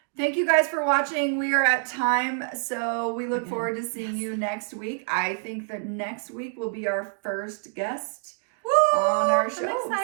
thank you guys for watching. We are at time, so we look forward to seeing you next week. I think that next week will be our first guest on our show.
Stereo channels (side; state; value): left; silent; digital silence